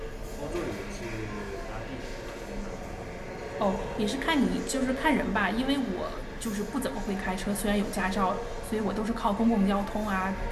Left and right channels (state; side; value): identical; both; correlation 1.00